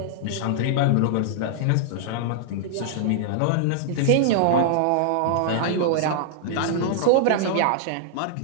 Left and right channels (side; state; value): both; different; correlation -0.01